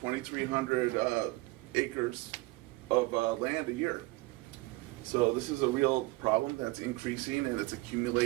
acres of land a year. So this is a real problem that's increasing and it's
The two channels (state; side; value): quieter; left; 21.7 dB